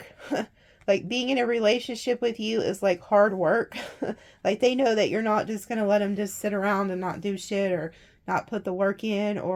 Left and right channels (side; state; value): both; identical; correlation 1.00